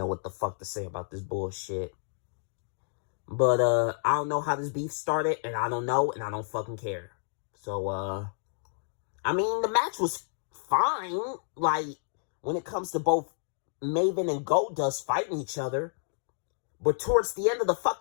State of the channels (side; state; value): right; silent; digital silence